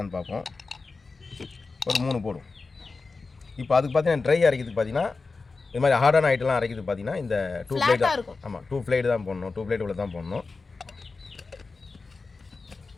பார்ப்போம். ஒரு 3 போடும். இப்போ அதுக்கு பார்த்தீங்கன்னா ட்ரை அரைக்கிறதுக்கு பார்த்தீங்கன்னா இது மாதிரி ஹார்டான ஐட்டம்லாம் அரைக்கிறதுக்கு பார்த்தீங்கன்னா இந்த 2 பிளேட் தான். ஆமாம், 2 பிளேட் தான் போடணும். 2 பிளேட் உள்ள தான் போடணும்.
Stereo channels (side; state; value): right; quieter; 4.1 dB